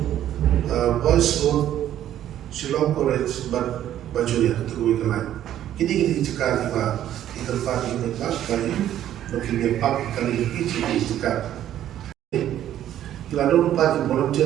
Boys Road, Shillong College, Bajuya, itu lain. Kini Jakarta di tempat ini bagi mungkin park kali ini di Jakarta. Kalau dulu parking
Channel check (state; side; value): quieter; left; 11.6 dB